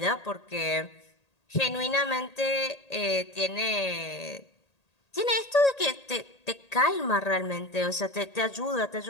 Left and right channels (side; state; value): right; late; 1.8 ms